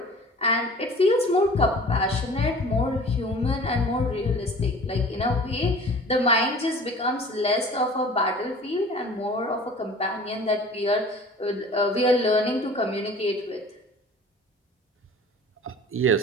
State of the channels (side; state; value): both; normal; correlation 0.44